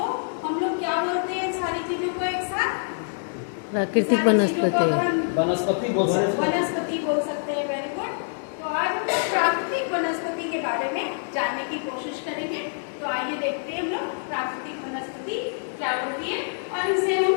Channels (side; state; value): right; silent; digital silence